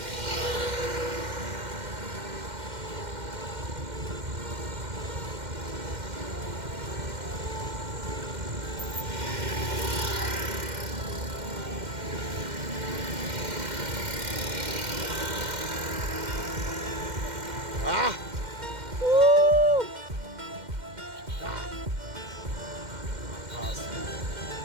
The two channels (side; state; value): left; late; 2.1 ms